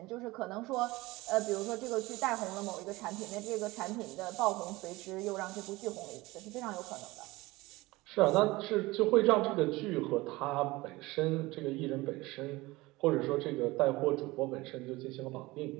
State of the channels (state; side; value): quieter; left; 20.8 dB